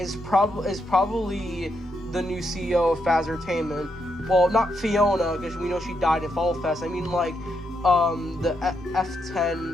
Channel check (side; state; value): both; normal; correlation 0.80